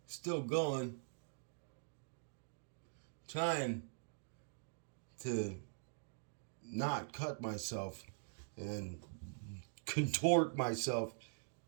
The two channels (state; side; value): silent; left; digital silence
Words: still going. Trying to not cut myself and contort myself